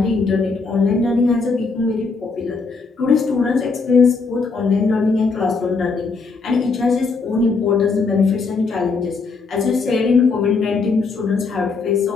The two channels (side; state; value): right; quieter; 4.4 dB